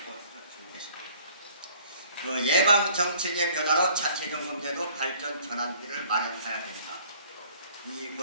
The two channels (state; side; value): inverted; both; correlation -0.54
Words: 것 같습니다. 예방 정책의 변화로 자체 점검제도 발전 전환기를 마련해야 됩니다.